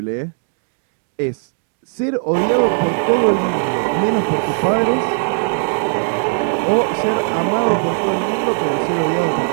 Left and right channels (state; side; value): silent; left; digital silence